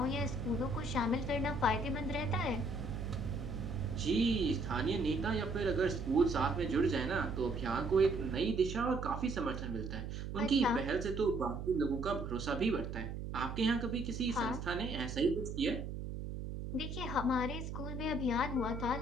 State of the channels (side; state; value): right; noise; hum, 6 dB below the sound